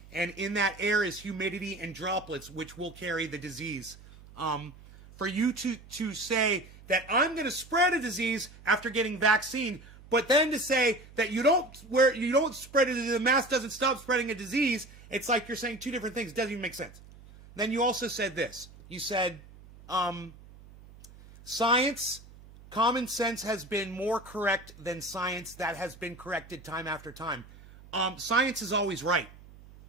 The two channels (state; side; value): noise; right; hum, 21 dB below the sound